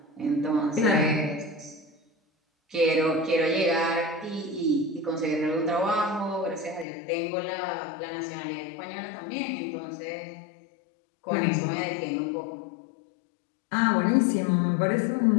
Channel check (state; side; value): drops out; right; at 6.9 s